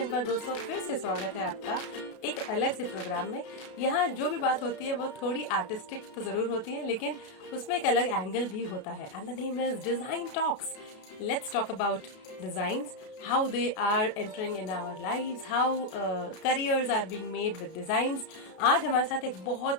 पर दोस्तों फिर से स्वागत है आपका एक अलग से प्रोग्राम में। यहाँ जो भी बात होती है वो थोड़ी आर्टिस्टिक तो ज़रूर होती है, लेकिन उसमें एक अलग एंगल भी होता है। And the name is design talks. Let's talk about designs, how they are entering in our lives, how careers are being made with designs. आज हमारे साथ एक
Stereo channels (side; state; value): right; late; 32 ms